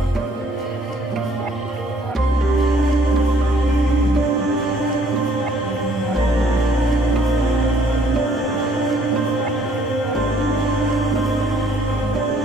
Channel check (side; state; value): both; normal; correlation 0.62